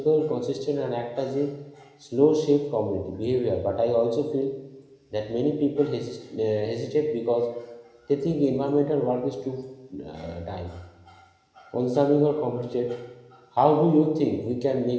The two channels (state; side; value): identical; both; correlation 1.00